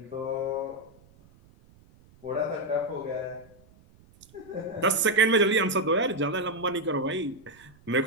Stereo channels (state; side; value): noise; right; rumble, 27 dB below the sound